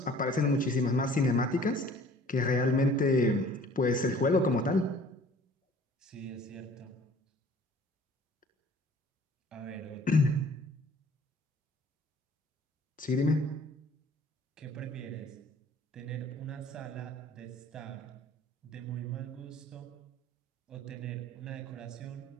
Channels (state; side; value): normal; both; correlation 0.51